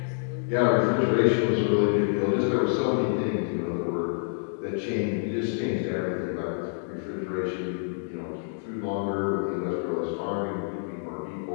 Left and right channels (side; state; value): right; silent; digital silence